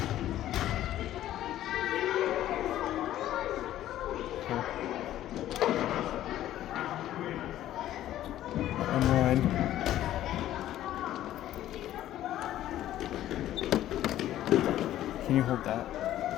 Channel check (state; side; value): quieter; right; 13.0 dB